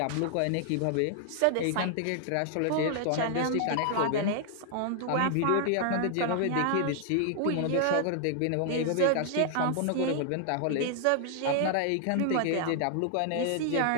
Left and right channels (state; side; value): different; both; correlation 0.00